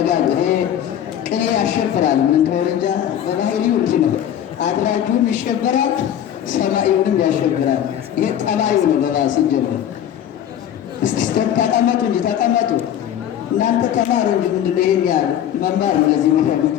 ይሄ ቅኔ ያሸብራል። ምን እንደሆነ እንጃ በባህሪው እንጂ ነው። አድራጁን ይሸበራል፣ ሰማዩንም ያሸብራል። ይሄ ጠባዩ ነው። በባስ ሲጀምር እስቲ ተቀመጡ እንጂ ተቀመጡ። እናንተ ተማሩ እንጂ ምንድን ነው ይሄን ያህል መማር ነው ለዚህ የሚፈልግ።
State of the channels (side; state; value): right; quieter; 10.3 dB